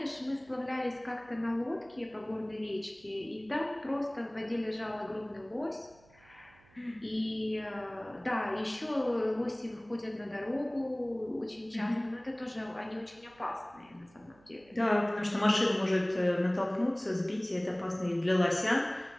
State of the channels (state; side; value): noise; right; hum, 28 dB below the sound